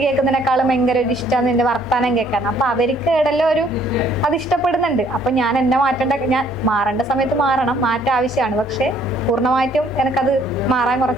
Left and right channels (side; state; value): both; normal; correlation 0.62